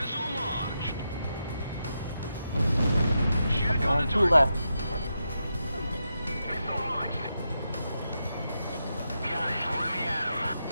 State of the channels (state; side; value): inverted; both; correlation -0.86